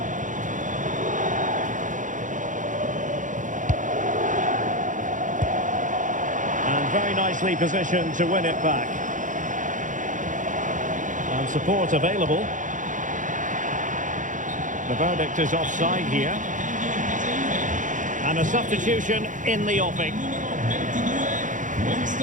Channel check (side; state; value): left; late; 0.37 ms